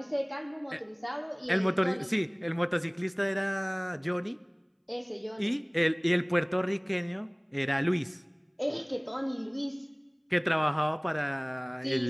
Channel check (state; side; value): identical; both; correlation 1.00